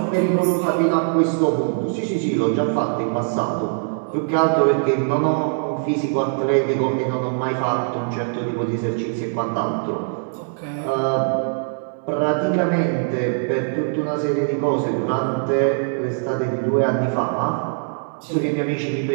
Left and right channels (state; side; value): silent; left; 64 dB below the other